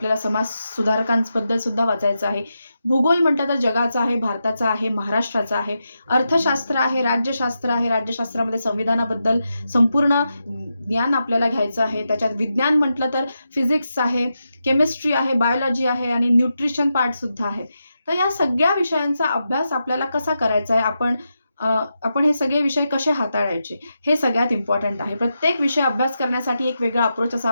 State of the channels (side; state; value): both; inverted; correlation -0.87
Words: समाज सुधारकांबद्दल सुद्धा वाचायचं आहे. भूगोल म्हटलं तर जगाचा आहे, भारताचा आहे, महाराष्ट्राचा आहे. अर्थशास्त्र आहे, राज्यशास्त्र आहे, राज्यशास्त्रामध्ये संविधानाबद्दल संपूर्ण ज्ञान आपल्याला घ्यायचं आहे. त्याच्यात विज्ञान म्हटलं तर फिजिक्स आहे, केमिस्ट्री आहे, बायोलॉजी आहे आणि न्यूट्रिशन पार्ट सुद्धा आहे. तर या सगळ्या विषयांचा अभ्यास आपल्याला कसा करायचा आहे, आपण हे सगळे विषय कसे हाताळायचे, हे सगळ्यात इम्पॉर्टंट आहे. प्रत्येक विषय अभ्यास करण्यासाठी एक वेगळा अप्रोच